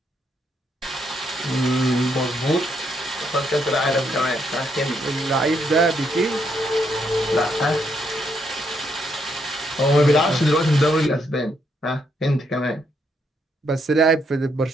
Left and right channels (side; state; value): both; normal; correlation 0.76